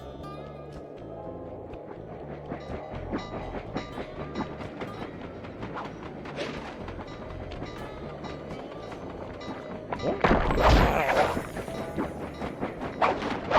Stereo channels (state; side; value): identical; both; correlation 1.00